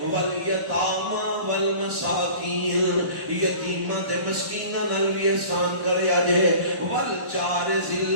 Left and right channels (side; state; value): left; late; 1.6 ms